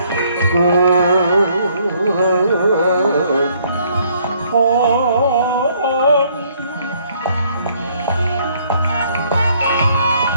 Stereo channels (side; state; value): both; inverted; correlation -0.66